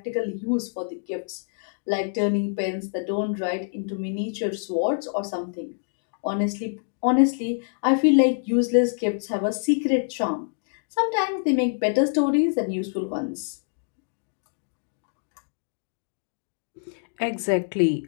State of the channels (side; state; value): right; silent; digital silence